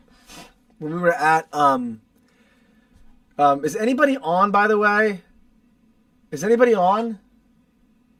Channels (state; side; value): identical; both; correlation 1.00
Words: Is anybody on, by the way? Is anybody on?